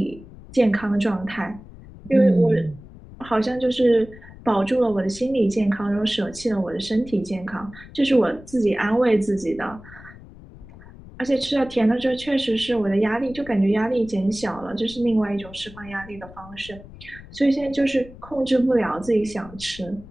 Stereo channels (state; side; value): noise; left; rumble, 18 dB below the sound